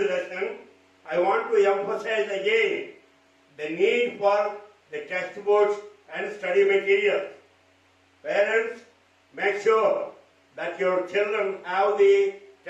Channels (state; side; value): identical; both; correlation 1.00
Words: lesson, I want to emphasize again the need for the textbooks and study materials. Parents, make sure that your children have the